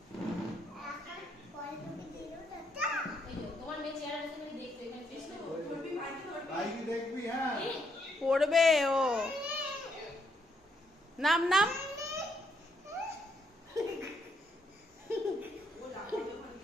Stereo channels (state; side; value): normal; both; correlation 0.75